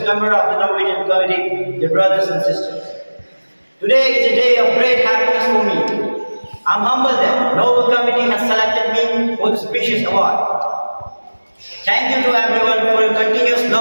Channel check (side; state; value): both; inverted; correlation -1.00